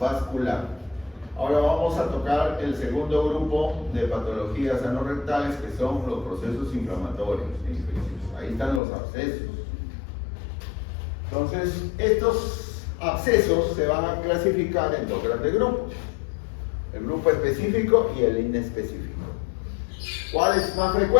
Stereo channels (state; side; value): drops out; right; at 8.8 s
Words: Ahora vamos a tocar el segundo grupo de patologías anorrectales, que son los procesos inflamatorios e infecciosos. Ahí están los abscesos. Entonces, estos abscesos se van a clasificar en dos grandes grupos: el grupo específico y el inespecífico. ¿Cuál es más